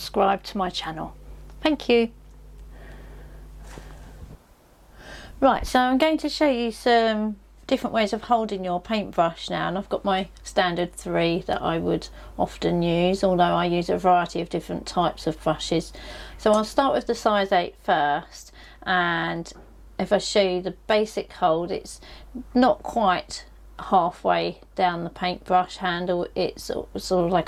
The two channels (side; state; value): both; identical; correlation 1.00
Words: to my channel. Thank you. Right, so I'm going to show you some different ways of holding your paintbrush now, and I've got my standard 3 that I would often use, although I use a variety of different types of brushes. So I'll start with the size 8 first, and if I show you the basic hold, it's not quite halfway down the paintbrush handle, it's sort of